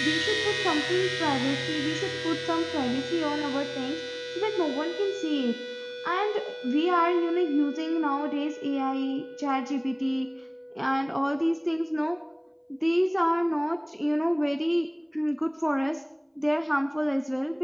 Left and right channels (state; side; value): identical; both; correlation 1.00